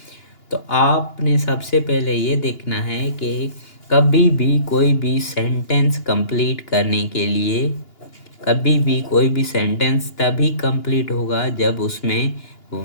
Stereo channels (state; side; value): late; right; 2.9 ms